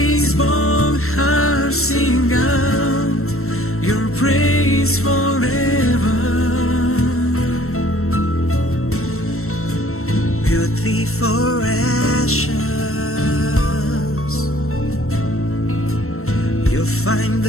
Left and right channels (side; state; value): right; late; 0.63 ms